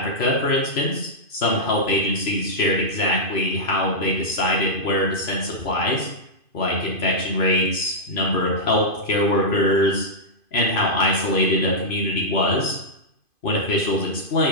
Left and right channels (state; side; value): late; right; 2.5 ms